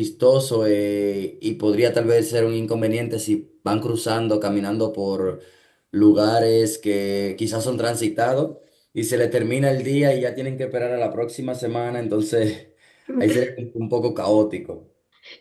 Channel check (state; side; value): identical; both; correlation 1.00